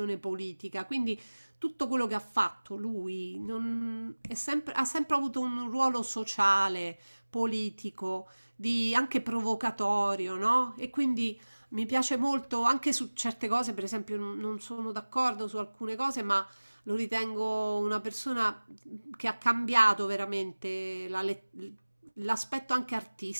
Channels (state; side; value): inverted; both; correlation -1.00